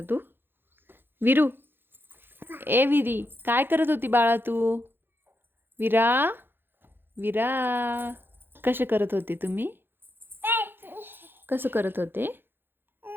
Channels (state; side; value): late; left; 0.10 ms